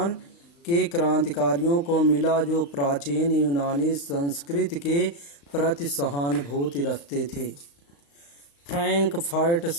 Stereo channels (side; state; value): right; late; 35 ms